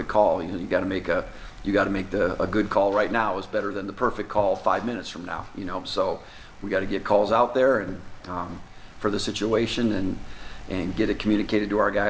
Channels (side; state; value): both; identical; correlation 1.00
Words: call. You got to make a good call right now is better than the perfect call 5 minutes from now. So we got to get calls out there and for the situation and get it communicated to our